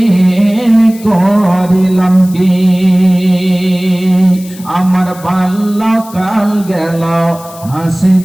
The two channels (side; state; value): left; noise; hiss, 20 dB below the sound